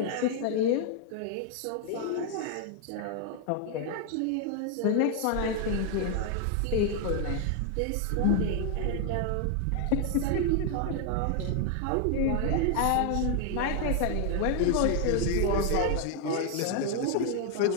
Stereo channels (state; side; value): different; both; correlation 0.00